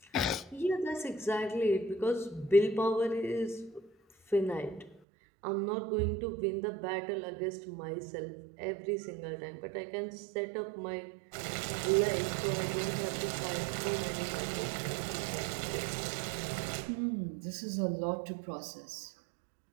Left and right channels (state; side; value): drops out; left; at 5.0 s